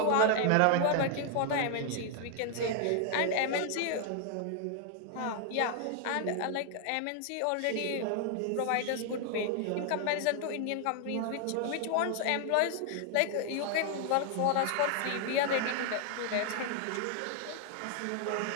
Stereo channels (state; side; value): different; both; correlation 0.00